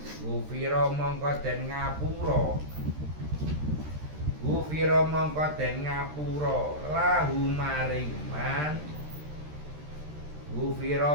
gufira mongko den ngapura. Gufira mongko den ngapura lahu maring man.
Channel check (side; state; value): left; late; 13 ms